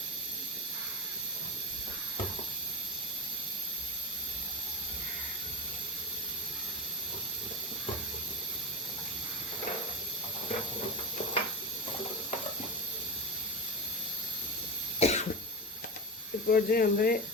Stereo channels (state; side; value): normal; both; correlation 0.22